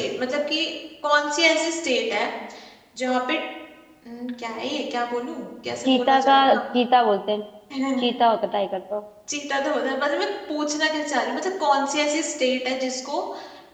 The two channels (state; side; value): identical; both; correlation 1.00